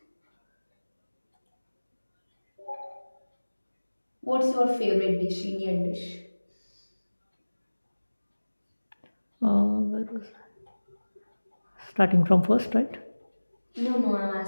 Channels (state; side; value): inverted; both; correlation -1.00